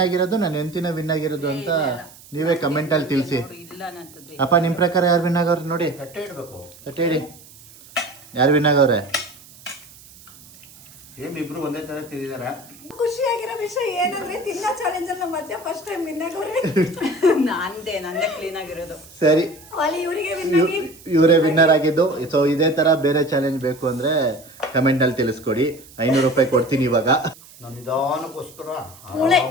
ಆಗಿರೋದು, ನನ್ನ ಹೆಂಡತಿನ ವಿನ್ ಆಗಿರೋದು ಅಂತ ನೀವೇ ಕಮೆಂಟ್ ಅಲ್ಲಿ ತಿಳಿಸಿ. ಅಪ್ಪ, ನಿಮ್ ಪ್ರಕಾರ ಯಾರು ವಿನ್ ಆಗವ್ರೆ ನೋಡಿ? ತಟ್ಟೆ ಇಡ್ಬೇಕು. ತಟ್ಟೆ ಇಡಿ. ಯಾರು ವಿನ್ ಆಗವ್ರೆ? ಇಬ್ರು ಒಂದೇ ತರ ತಿಂದಿದ್ದಾರೆ. ಖುಷಿಯಾಗಿರೋ ವಿಷಯ ಏನಂದ್ರೆ ತಿನ್ನೋ ಚಾಲೆಂಜ್ ಅಲ್ಲಿ ಮಧ್ಯ ಫಸ್ಟ್ ಟೈಮ್ ವಿನ್ ಆಗೋರೆ. ನಂದೇ ಕ್ಲೀನ್ ಆಗಿರೋದು. ಸರಿ, ಇವರಿಗೆ ಇವರೇ ವಿನ್ನರ್ ಆಗಿದ್ದು. ಸೊ ಇದೇ ತರ ಬೇರೆ ಚಾಲೆಂಜ್ ಬೇಕು ಅಂದ್ರೆ ಕಮೆಂಟ್ ಅಲ್ಲಿ ತಿಳಿಸ್ಕೊಡಿ. 500 ರೂಪಾಯಿ ಕೊಡ್ತೀನಿ ಇವಾಗ. ನಾನು ನಿಧಾನಕ್ಕೋಸ್ಕರ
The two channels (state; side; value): noise; right; hiss, 22 dB below the sound